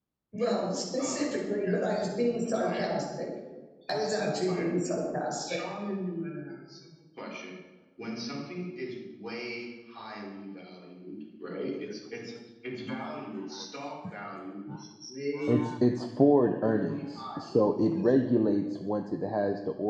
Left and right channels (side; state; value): both; identical; correlation 1.00